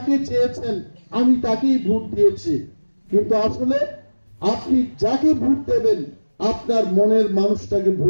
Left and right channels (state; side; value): inverted; both; correlation -1.00